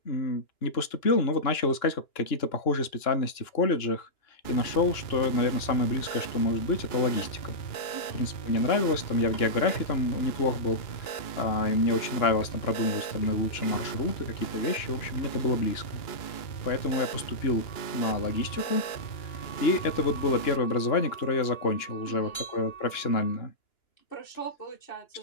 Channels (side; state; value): right; late; 2.9 ms